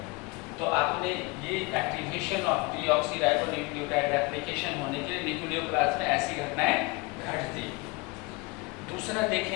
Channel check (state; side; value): quieter; right; 25.5 dB